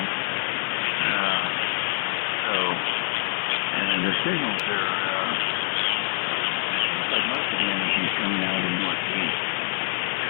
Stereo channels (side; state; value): right; silent; digital silence